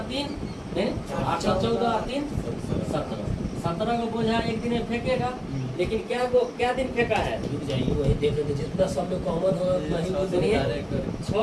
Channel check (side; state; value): both; identical; correlation 1.00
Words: 3 8 और 14 और 3 17। 17 को बोझा एक दिन में फेंकेगा, लेकिन क्या दिन फेंका है? वही देख रहे थे जितना सब में कॉमन हो वही सुनिए,